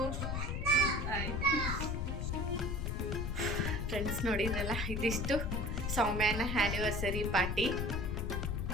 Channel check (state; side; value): noise; left; rumble, 1 dB below the sound